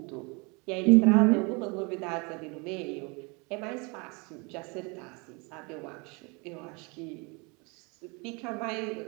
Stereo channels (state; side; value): quieter; left; 29.8 dB